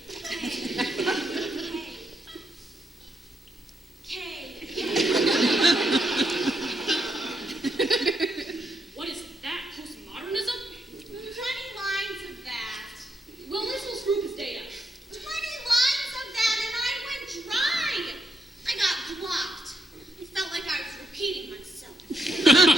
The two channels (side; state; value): both; normal; correlation 0.80